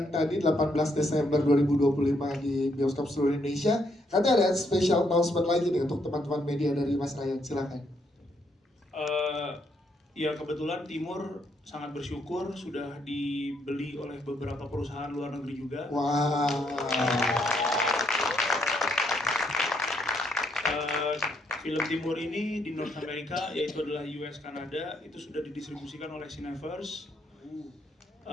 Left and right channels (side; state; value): both; normal; correlation 0.74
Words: tadi 18 Desember 2025 di bioskop seluruh Indonesia, katanya ada special announcement lagi nih untuk teman-teman media dari Mas Ryan, silakan. Ya kebetulan Timur sangat bersyukur sudah dibeli oleh beberapa perusahaan luar negeri juga. Wow. Film Timur ini di North America, yaitu adalah US Kanada, itu sudah didistribusikan oleh Cineverse.